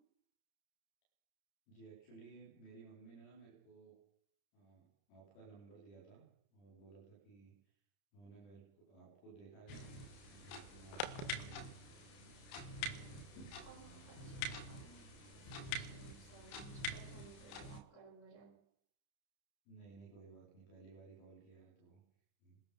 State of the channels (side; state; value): right; late; 30 ms